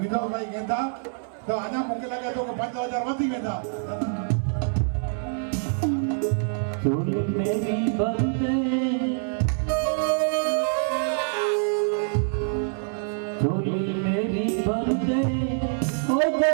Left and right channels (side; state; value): left; silent; 59 dB below the other